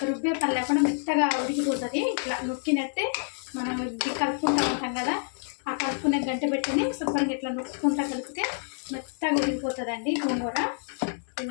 రుబ్బే పని లేకుండా మెత్తగా ఉడికిపోతుంది. ఇట్లా నొక్కినట్టే మనం ఇది కలుపుకుంటూ ఉంటాం కదా, ఆ కలుపుకునే గంట పెట్టిని శుభ్రంగా ఇట్లా నొక్కుంటా కలిపితే మెత్తగా ఉడికిపోతుందండి గోంగూర.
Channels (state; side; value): silent; right; 58 dB below the other